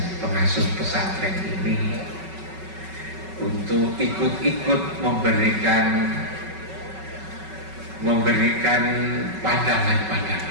pengasuh pesantren ini untuk ikut memberikan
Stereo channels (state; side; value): late; left; 5.3 ms